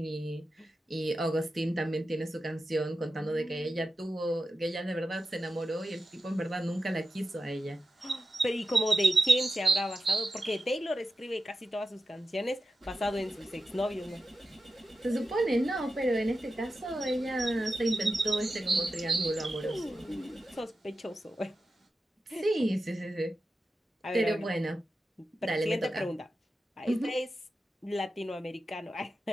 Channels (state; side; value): normal; both; correlation 0.92